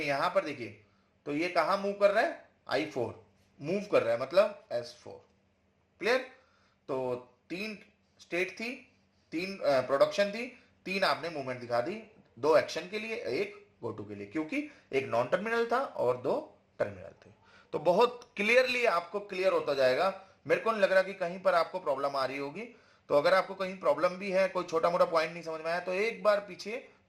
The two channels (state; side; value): identical; both; correlation 1.00